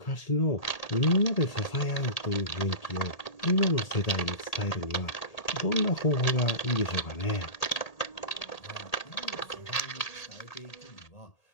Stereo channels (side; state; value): right; late; 1.8 ms